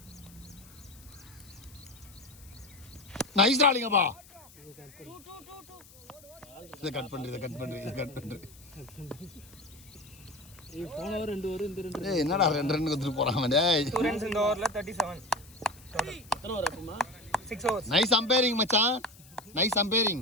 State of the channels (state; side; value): noise; left; hiss, 23 dB below the sound